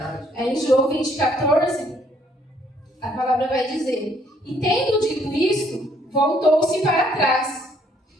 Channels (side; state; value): both; normal; correlation 0.66